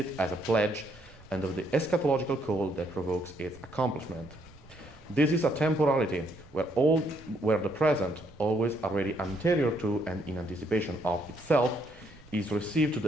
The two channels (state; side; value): noise; right; rumble, 24 dB below the sound